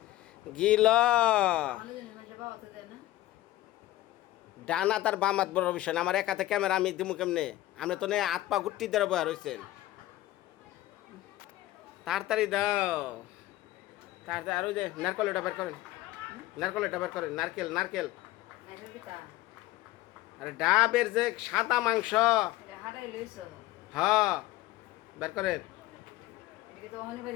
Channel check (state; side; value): quieter; right; 16.1 dB